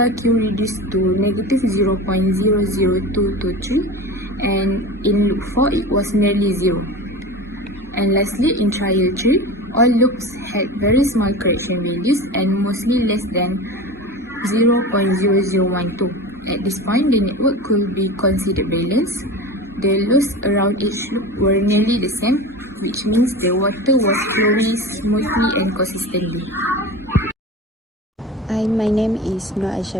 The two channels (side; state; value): both; normal; correlation 0.31